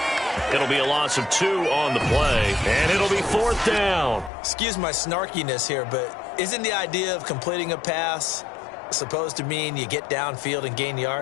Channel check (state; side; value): drops out; right; at 4.3 s